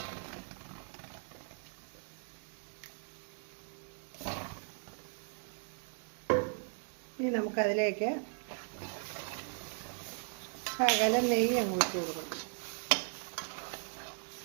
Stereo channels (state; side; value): silent; left; 53 dB below the other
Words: ഇനി നമുക്കതിലേക്ക് ശകലം നെയ്യ് അങ്ങോട്ട് കൊടുക്കണം.